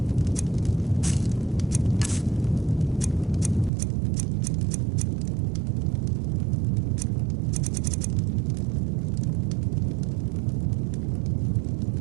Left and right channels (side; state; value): left; drops out; at 3.7 s